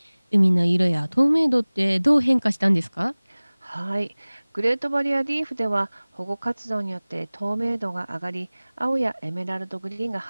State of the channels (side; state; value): both; inverted; correlation -1.00